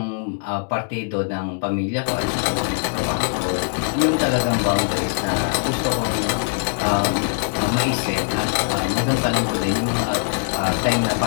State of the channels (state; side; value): silent; right; digital silence